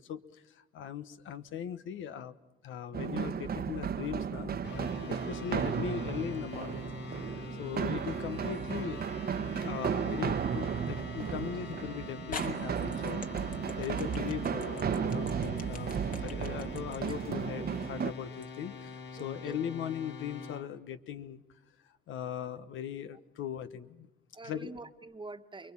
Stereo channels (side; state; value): both; normal; correlation 0.35